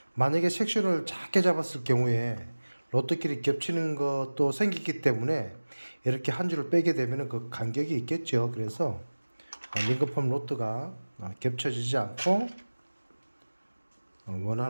만약에 섹션을 작게 잡았을 경우에 로드끼리 겹치는 것도 생기기 때문에 이렇게 한 줄을 빼게 되면 그 간격이 있겠죠. 그래서 링거펌 로드가 겹쳐지지 않고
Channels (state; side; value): inverted; both; correlation -1.00